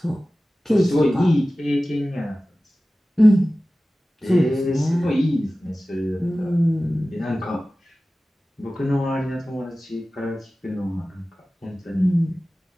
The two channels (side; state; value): both; normal; correlation 0.96